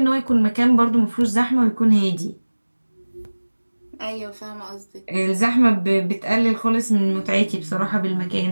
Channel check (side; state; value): both; inverted; correlation -1.00